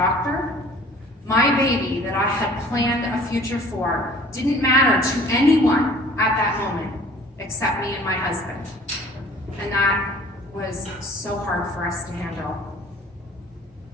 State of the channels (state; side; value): normal; both; correlation 0.50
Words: My baby that I had planned a future for didn't matter to anyone at that moment except me and my husband. And that was so hard for us to handle.